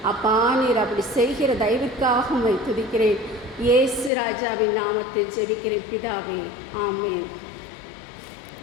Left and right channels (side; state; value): right; drops out; at 4.1 s